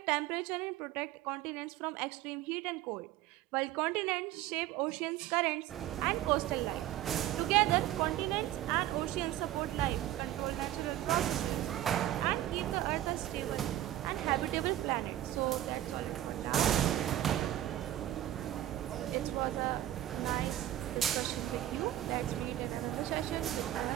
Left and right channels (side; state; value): left; quieter; 13.5 dB